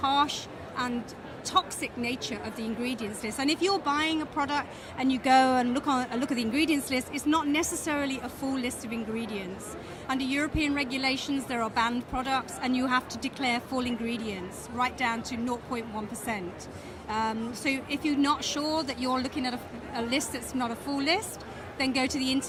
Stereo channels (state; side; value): identical; both; correlation 1.00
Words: and toxic nature of the ingredients list. And if you're buying a product and you go and look at the ingredients list, it's not necessarily a full list of ingredients. Under European regulations, there are banned products, and you have to declare full ingredients, right down to 0.1%. So if you're not sure that you're looking at a list that's not a full list, then go to the